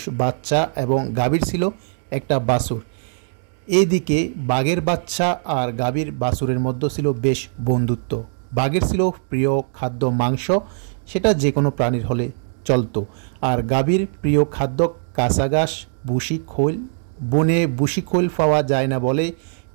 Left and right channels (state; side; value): silent; left; digital silence